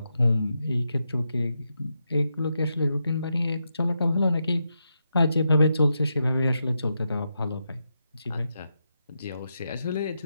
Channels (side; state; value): both; inverted; correlation -0.85